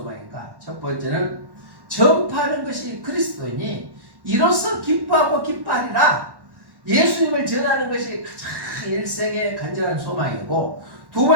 첫 번째는 전파하는 것이 그리스도이니 이로써 기뻐하고 기뻐하리라. 예수님을 전하는 것이 가장 일생의 간절한 소망이고, 두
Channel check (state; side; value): late; left; 1.1 ms